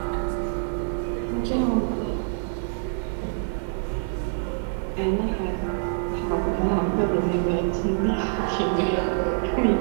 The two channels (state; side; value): silent; left; digital silence